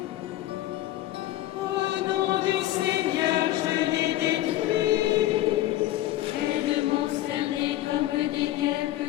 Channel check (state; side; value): quieter; right; 14.8 dB